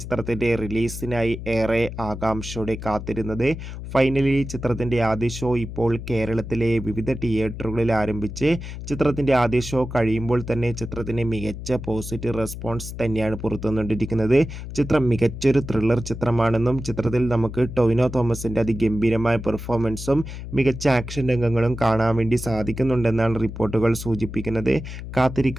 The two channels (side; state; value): left; noise; hum, 9 dB below the sound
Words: ചിത്രത്തിൻ്റെ റിലീസിനായി ഏറെ ആകാംക്ഷയോടെ കാത്തിരുന്നത്. ഫൈനലി ചിത്രത്തിൻ്റെ ആദ്യ ഷോ ഇപ്പോൾ കേരളത്തിലെ വിവിധ തിയേറ്ററുകളിൽ ആരംഭിച്ച് ചിത്രത്തിൻ്റെ ആദ്യ ഷോ കഴിയുമ്പോൾ തന്നെ ചിത്രത്തിന് മികച്ച പോസിറ്റീവ് റെസ്പോൺസ് തന്നെയാണ് പുറത്തുവന്നുകൊണ്ടിരിക്കുന്നത്. ചിത്രം മികച്ചൊരു ത്രില്ലർ ചിത്രമാണെന്നും ചിത്രത്തിൽ നമുക്ക് ടൊവിനോ തോമസിൻ്റെ അതിഗംഭീരമായ പെർഫോമൻസും മികച്ച ആക്ഷൻ രംഗങ്ങളും കാണാൻ വേണ്ടി സാധിക്കുന്നുണ്ടെന്നാണ് റിപ്പോർട്ടുകൾ സൂചിപ്പിക്കുന്നത്.